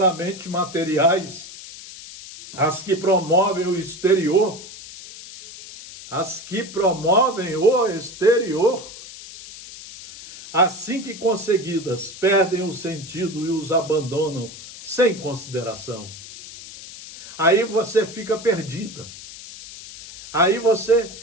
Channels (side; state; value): left; noise; hiss, 15 dB below the sound